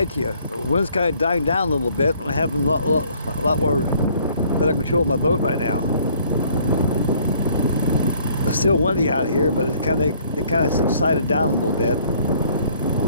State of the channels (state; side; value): inverted; both; correlation -0.60